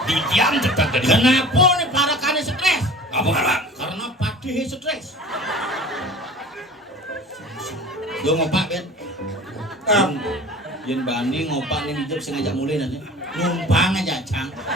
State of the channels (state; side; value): normal; both; correlation 0.41